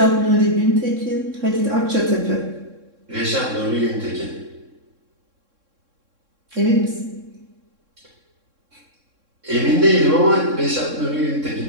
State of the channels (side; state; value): left; late; 3.6 ms